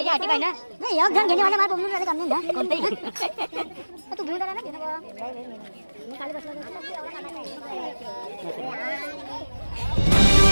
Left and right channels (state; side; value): inverted; both; correlation -1.00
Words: आटी पाहिजे ना. नाही एक जण घेणे वाला मला बोलून राहिले कमी ना कोणतेही. तू घेऊन आला ना घेणं बाबा. मी खाली बसलो होतो.